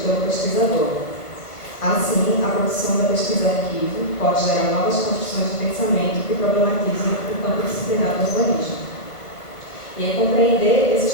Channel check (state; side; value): late; right; 1.4 ms